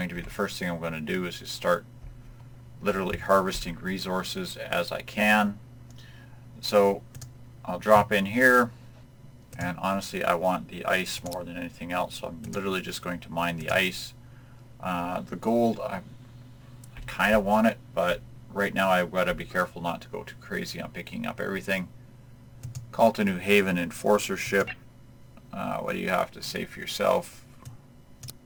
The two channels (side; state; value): both; identical; correlation 1.00